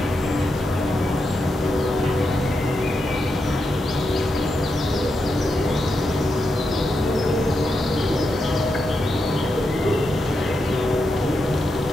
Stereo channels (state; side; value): normal; both; correlation 0.85